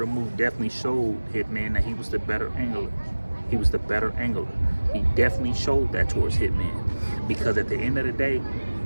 Mook definitely showed Hitman that he was the better angler. He was the better angler. He definitely showed that towards Hitman, because at the end of the day,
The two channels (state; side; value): inverted; both; correlation -1.00